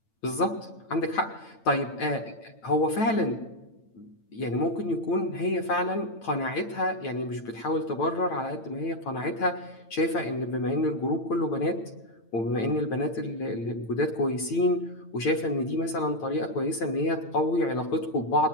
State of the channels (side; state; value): right; late; 8.9 ms